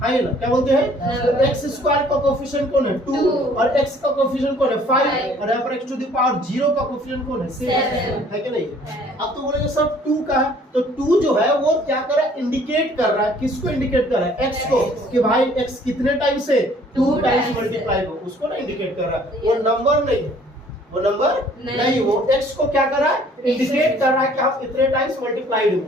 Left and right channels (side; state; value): both; normal; correlation 0.57